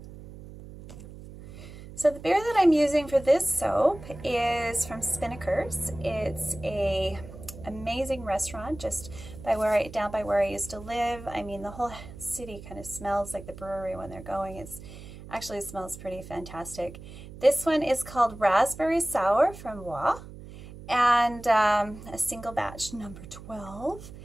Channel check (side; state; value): right; noise; hum, 15 dB below the sound